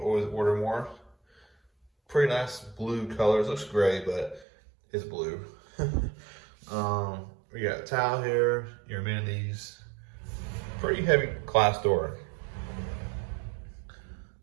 always order more. Pretty nice blue colors. Looks gray, but it's blue. We got a towel here, your amenities. Pretty heavy glass door.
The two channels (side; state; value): left; drops out; at 4.5 s